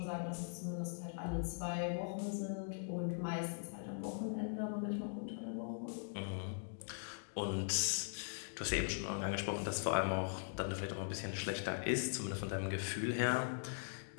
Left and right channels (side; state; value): right; silent; digital silence